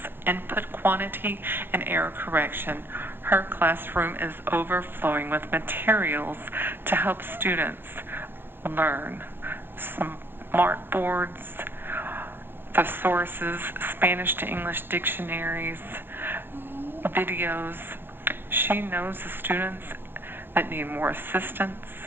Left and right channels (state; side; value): late; left; 0.10 ms